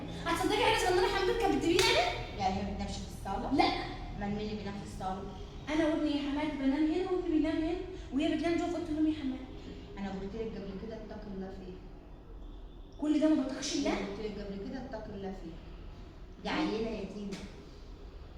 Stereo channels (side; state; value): both; identical; correlation 1.00